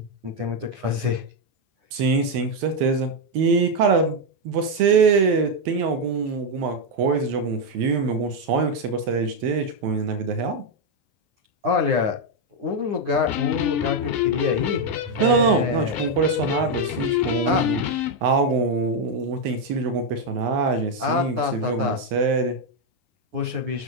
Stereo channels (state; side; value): late; left; 10 ms